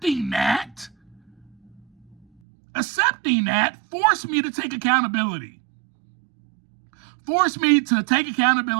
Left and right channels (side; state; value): left; drops out; at 2.2 s